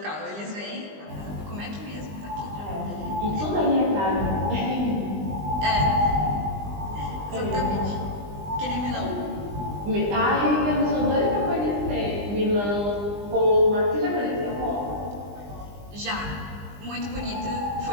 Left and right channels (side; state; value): left; late; 20 ms